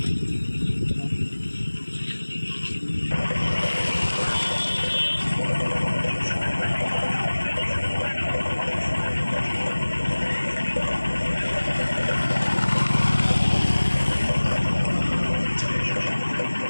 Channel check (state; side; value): inverted; both; correlation -1.00